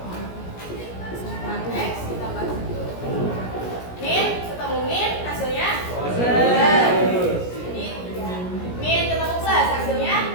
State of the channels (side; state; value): right; late; 17 ms